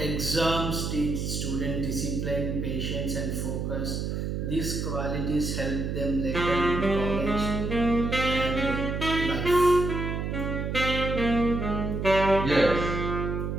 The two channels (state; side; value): noise; right; hum, 2 dB below the sound